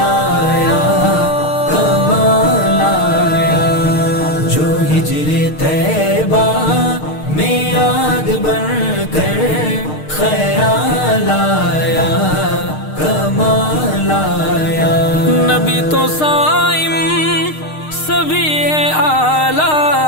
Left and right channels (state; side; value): late; right; 6.5 ms